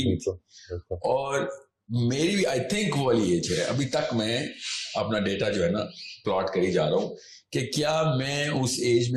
بھی تھی. اور میری بھی آئی تھنک وہ والی ایج ہے, ابھی تک میں اپنا ڈیٹا جو ہے نا پلاٹ کری جا رہا ہوں کہ کیا میں اس ایج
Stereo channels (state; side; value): identical; both; correlation 1.00